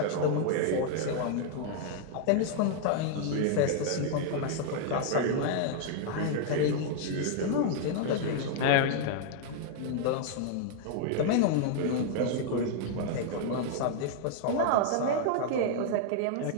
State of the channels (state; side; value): different; both; correlation 0.00